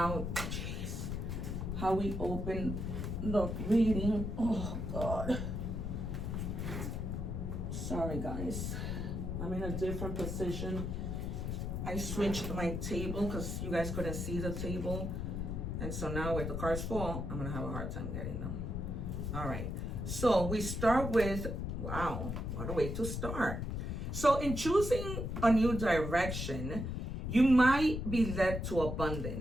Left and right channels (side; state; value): left; noise; rumble, 3 dB below the sound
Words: we open the reading. Oh God. Sorry guys, I'm in a different position. I switched my table because you guys couldn't see the table, and so now with the cards fall, I'm gonna have a hard time getting them. All right, so we start with, wow, what a way to start. So in choosing a new direction, you might be led to